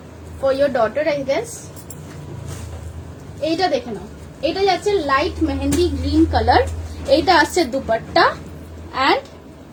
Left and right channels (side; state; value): both; identical; correlation 1.00